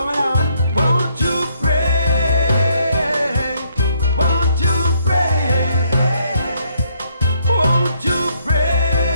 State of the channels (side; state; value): both; inverted; correlation -0.70